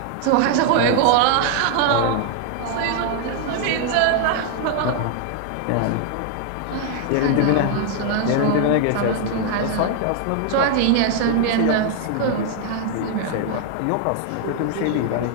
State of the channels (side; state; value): both; different; correlation 0.00